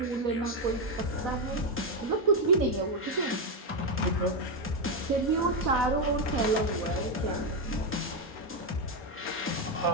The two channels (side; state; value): both; normal; correlation 0.05